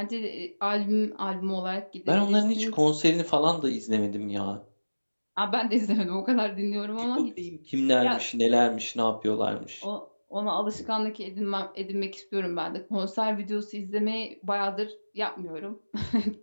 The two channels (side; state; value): both; inverted; correlation -1.00